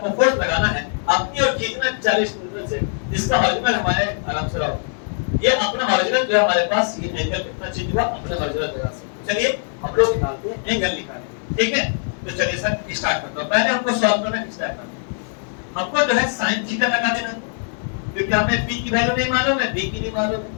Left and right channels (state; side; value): silent; right; digital silence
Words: फोर्स लगाना है अपनी और खींचना 40 न्यूटन से, जिसका ओरिजिनल हमारे आराम से रहो ये अपना ओरिजिनल जो है हमारे पास ये एंगल कितना चेंज हुआ अपने ओरिजिनल जगह से। चलिए हम लोग निकालते हैं एंगल निकालेंगे, ठीक है? तो चलिए सर स्टार्ट करते हैं। पहले हमको सॉल्व करना है, स्टार्ट करना है। हमको जो है sin थीटा लगा देना, क्योंकि हमें p की वैल्यू नहीं मालूम है, b की नहीं मालूम